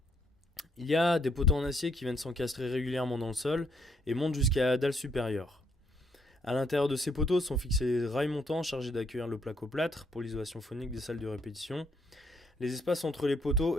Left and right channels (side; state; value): both; normal; correlation 0.72